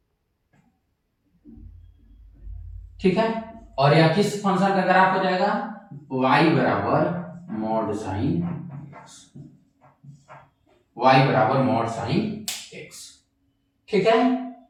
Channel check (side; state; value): both; identical; correlation 1.00